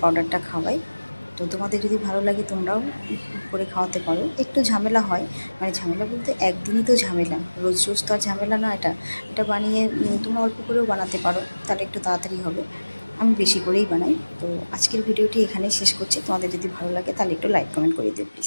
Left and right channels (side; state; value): both; inverted; correlation -1.00